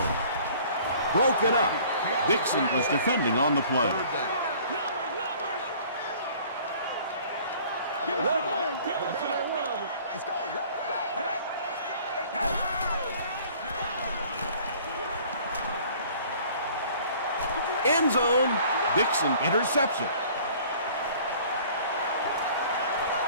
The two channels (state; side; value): inverted; both; correlation -0.52